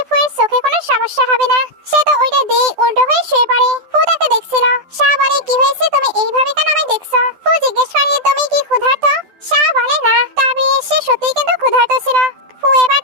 ফুয়ের চোখে কোনো সমস্যা হবে না। সে তো ওইটা দিয়ে উল্টো হয়ে শুয়ে পড়ে। ফু তাকে দেখছিল। শাও বলে, কি হয়েছে, তুমি এইভাবে কেন আমায় দেখছো? ফু জিজ্ঞেস করে, তুমি কি ক্ষুধার্ত? শাও বলে, না, তবে সে সত্যিই কিন্তু ক্ষুধার্ত ছিল। ফু এবার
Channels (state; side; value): late; left; 12 ms